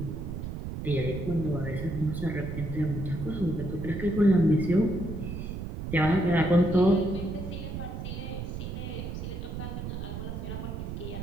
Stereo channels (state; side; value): noise; right; rumble, 6 dB below the sound